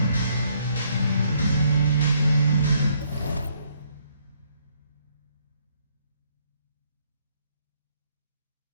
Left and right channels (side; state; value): both; inverted; correlation -0.69